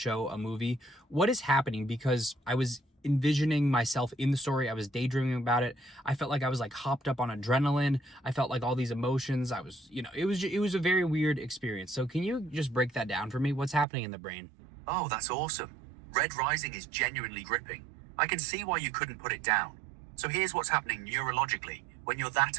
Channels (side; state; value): left; drops out; at 13.9 s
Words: a movie. What is happening? Because I was envisioning myself in the story. I was daydreaming about it. I felt like I was like hopped up on adrenaline. I felt like all these emotions. I was, it was a very weird experience. So can you just break that down for me? What's happening in the brain? Oh, that's awesome. Red Rising is genuinely gripping. I can see why you couldn't put it down. So here's what's happening neurologically when you're that